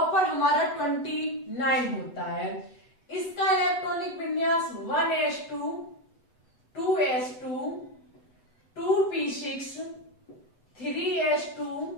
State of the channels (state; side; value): late; right; 8.0 ms